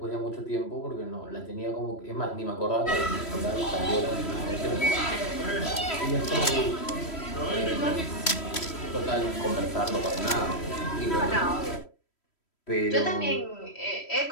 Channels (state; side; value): late; right; 3.1 ms